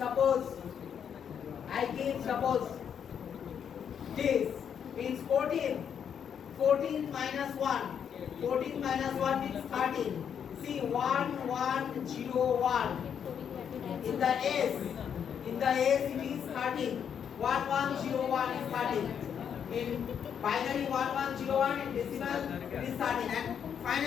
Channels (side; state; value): right; quieter; 8.0 dB